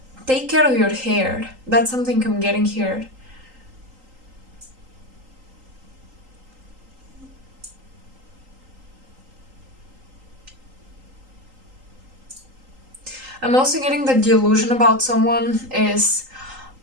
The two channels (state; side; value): late; left; 3.8 ms